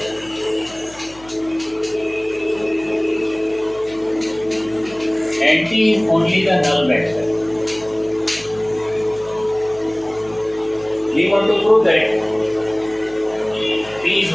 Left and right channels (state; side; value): noise; left; hum, 23 dB below the sound